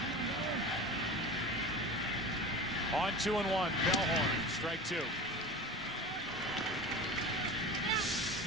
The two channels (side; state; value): both; normal; correlation 0.32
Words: On 2-1, Bellhorn, strike two.